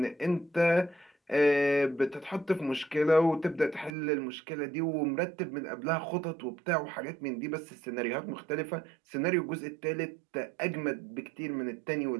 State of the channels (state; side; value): drops out; left; at 3.9 s